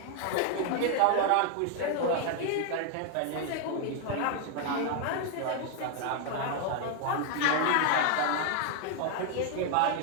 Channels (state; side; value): different; both; correlation 0.00